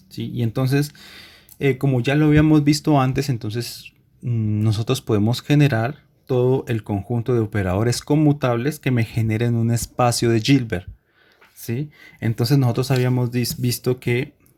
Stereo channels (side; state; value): both; identical; correlation 1.00